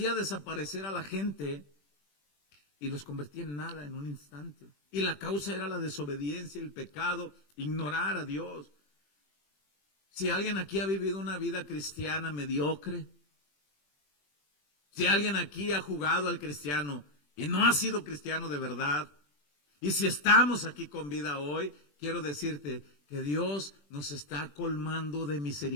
desaparecer a la gente y los convertía en nada en un instante. Y la causa era la desobediencia, el pecado, ignorar a Dios. Si alguien aquí ha vivido una vida cristiana mediocre, si alguien aquí ha jugado al cristiano y no ha sido cristiano de verdad, y si estamos aquí con vida hoy, quiero decirte que Dios nos está colmando de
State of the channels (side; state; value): right; late; 20 ms